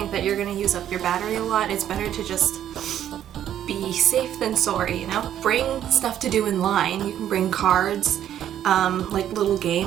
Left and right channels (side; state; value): left; quieter; 10.8 dB